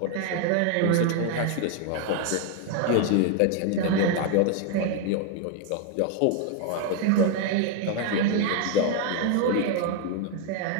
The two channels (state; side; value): different; both; correlation 0.01